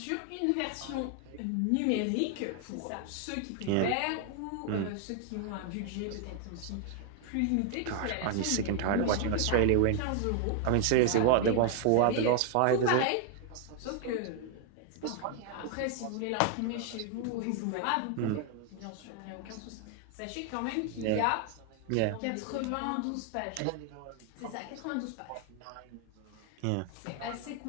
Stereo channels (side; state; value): both; different; correlation 0.01